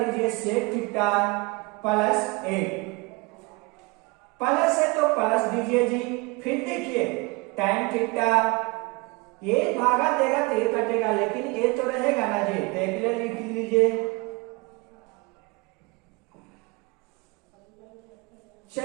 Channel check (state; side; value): quieter; left; 26.6 dB